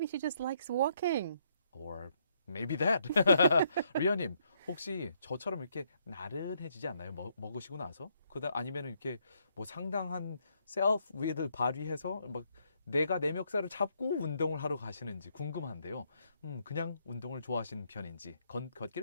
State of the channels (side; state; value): both; inverted; correlation -0.72